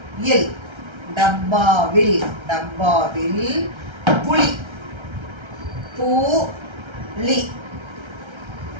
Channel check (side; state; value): left; late; 1.3 ms